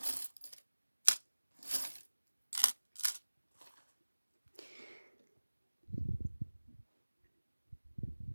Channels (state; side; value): inverted; both; correlation -1.00